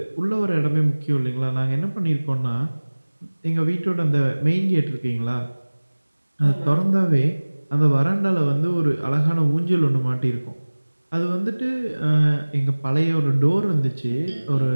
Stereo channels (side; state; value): both; inverted; correlation -1.00